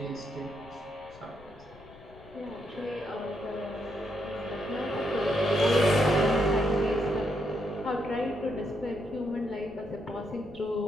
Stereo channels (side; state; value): left; noise; rumble, 22 dB below the sound